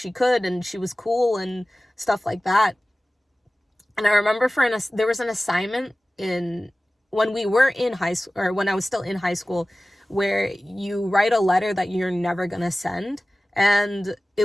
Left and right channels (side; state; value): both; normal; correlation 0.97